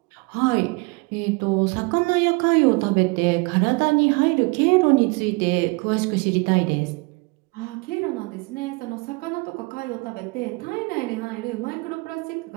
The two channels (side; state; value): left; quieter; 28.1 dB